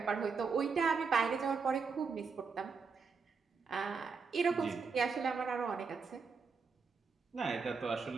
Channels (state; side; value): quieter; left; 5.1 dB